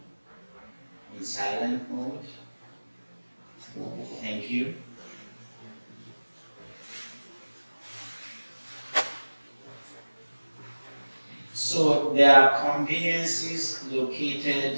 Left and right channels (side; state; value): both; inverted; correlation -1.00